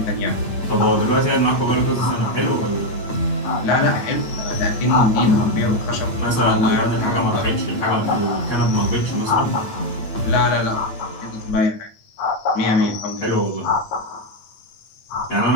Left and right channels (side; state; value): right; late; 8.9 ms